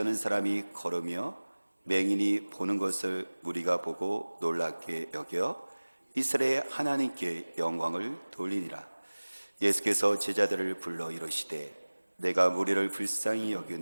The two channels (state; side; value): inverted; both; correlation -1.00